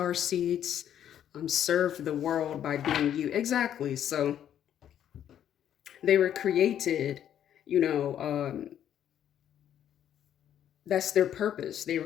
seeds, serve the world by being you. Exactly. So they were created, you know, that's their purpose. They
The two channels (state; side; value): quieter; right; 10.2 dB